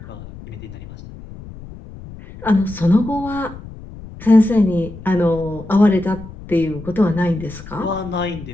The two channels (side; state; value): left; noise; rumble, 15 dB below the sound